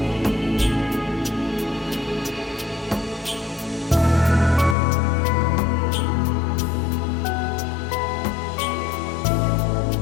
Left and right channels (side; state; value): right; drops out; at 4.8 s